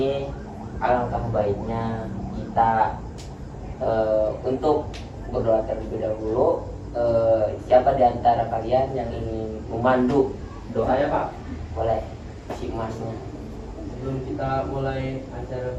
alangkah baiknya kita untuk berdoa terlebih dahulu. Siapa di antara kalian yang ingin memandu doa? Saya Pak. Boleh, si emasnya. Sebelum kita mulai acara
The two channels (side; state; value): both; identical; correlation 1.00